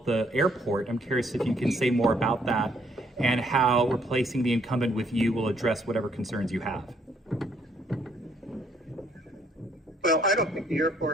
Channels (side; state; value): both; normal; correlation 0.68